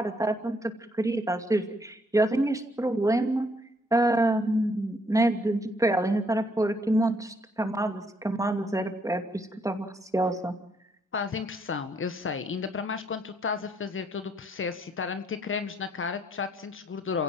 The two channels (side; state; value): both; normal; correlation 0.70